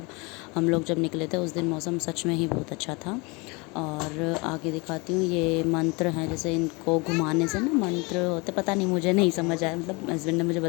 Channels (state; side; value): quieter; right; 27.6 dB